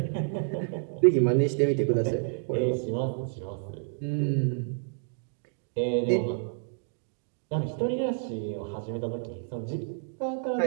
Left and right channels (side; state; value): left; silent; digital silence